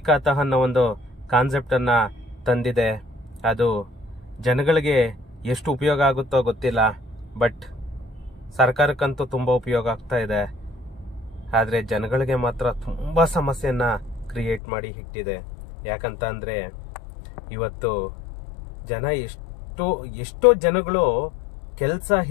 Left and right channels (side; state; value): right; drops out; at 14.6 s